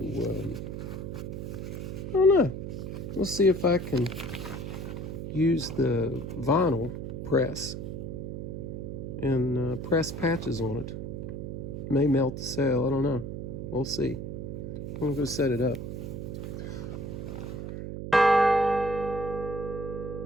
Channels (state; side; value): noise; right; hum, 6 dB below the sound